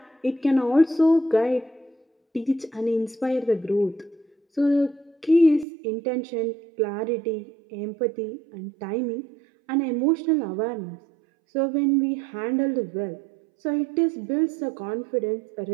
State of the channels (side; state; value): left; drops out; at 5.7 s